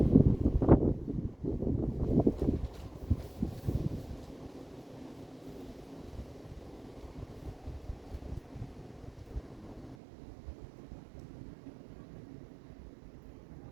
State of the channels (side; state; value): left; drops out; at 10.0 s